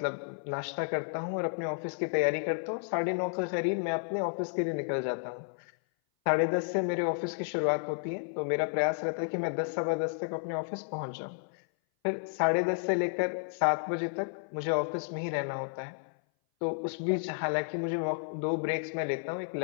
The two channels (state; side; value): silent; right; 57 dB below the other